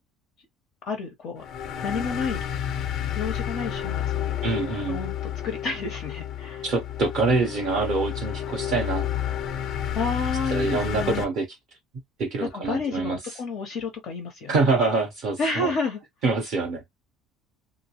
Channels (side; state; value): both; normal; correlation 0.46